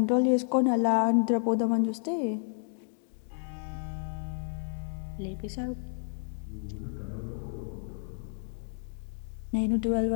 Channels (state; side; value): silent; right; digital silence